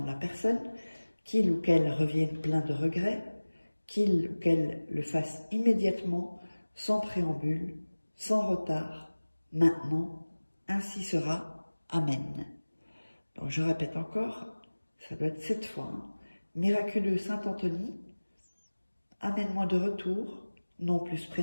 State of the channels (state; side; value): inverted; both; correlation -1.00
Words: de la personne, qu'il ou qu'elle revienne plein de regrets, qu'il ou qu'elle le fasse immédiatement, sans préambule, sans retard, maintenant, ainsi sera. Amen. Donc je répète encore, ça doit être 7 fois. Miraculeux Saint-Anthony, amène-moi de retour, nom plus